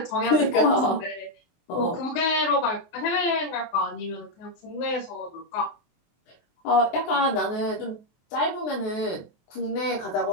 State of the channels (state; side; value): late; right; 23 ms